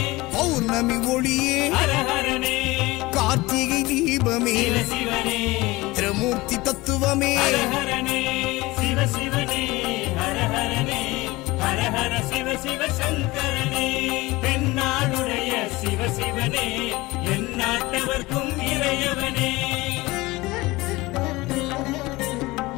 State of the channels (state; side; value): quieter; right; 20.9 dB